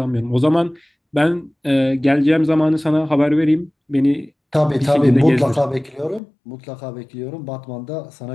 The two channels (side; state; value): right; drops out; at 6.2 s